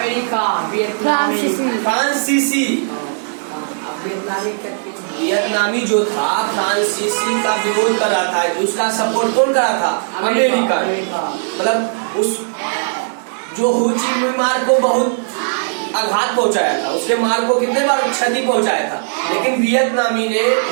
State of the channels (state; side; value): silent; left; 68 dB below the other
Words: फ्रांसीसी वियतनामी जो था फ्रांसीसी का विरोध कर रहा था। उसका सपोर्ट कौन कर रहा था? अमेरिका। मतलब उस जो हो ची मिन्ह मार्ग को बहुत आघात पहुंचाया था, उसके मार्ग को कितने बार क्षति पहुंचाया था, लेकिन वियतनामी ने